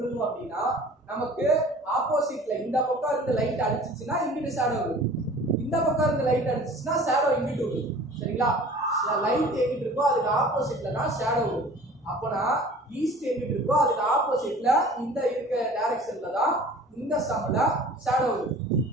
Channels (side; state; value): both; normal; correlation 0.45